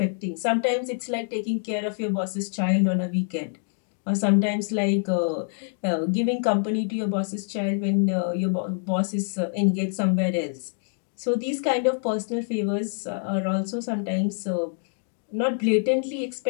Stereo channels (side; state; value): right; silent; 59 dB below the other